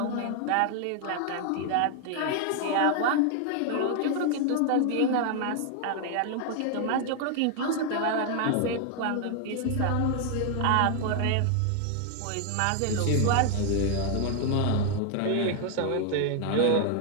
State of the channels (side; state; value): both; different; correlation 0.00